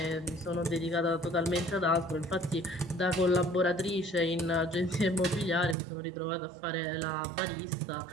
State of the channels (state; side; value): drops out; left; at 5.8 s